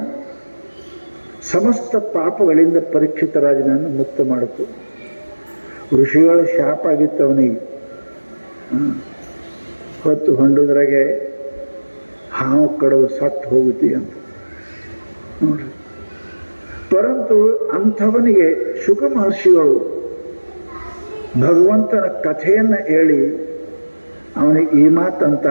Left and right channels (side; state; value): both; inverted; correlation -1.00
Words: ಸಮಸ್ತ ಪಾಪಗಳಿಂದ ಪರೀಕ್ಷಿತ ರಾಜನನ್ನು ಮುಕ್ತ ಮಾಡಿತು. ಋಷಿಗಳ ಶಾಪ ಆಗಿತ್ತು ಅವನಿಗೆ. ಹೊತ್ತು ಹೊಂಡುದ್ರಾಗೆ ಹಾವು ಕಡವು ಸತ್ತು ಹೋಗುತ್ತಿ ಅಂತ ನೋಡ್ರಿ. ಪರಂತು ಅಂಥವನಿಗೆ ಶುಕ ಮಹರ್ಷಿಗಳು ಭಗವಂತನ ಕಥೆಯನ್ನು ಹೇಳಿ ಅವನಿಗೆ ಈ